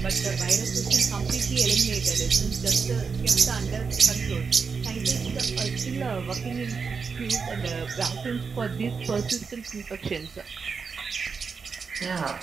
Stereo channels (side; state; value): left; quieter; 5.4 dB